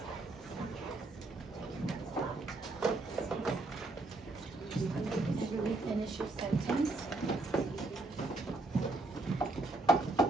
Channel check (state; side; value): quieter; left; 3.1 dB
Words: Really finish your sentence.